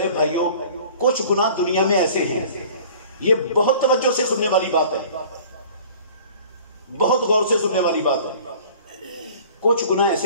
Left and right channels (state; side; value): inverted; both; correlation -0.47